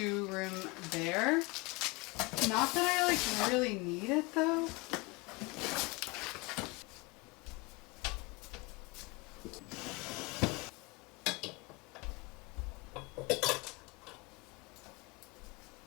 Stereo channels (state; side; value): quieter; right; 25.9 dB